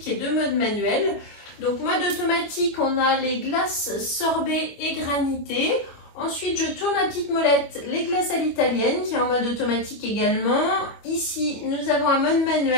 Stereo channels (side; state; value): right; late; 25 ms